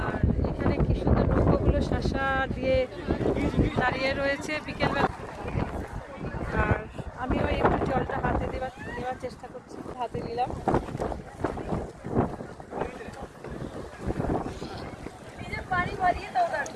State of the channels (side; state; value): both; identical; correlation 1.00